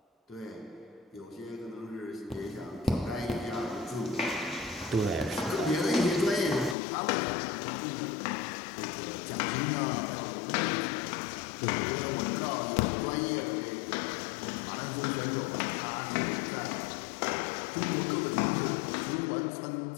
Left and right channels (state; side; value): drops out; right; at 6.8 s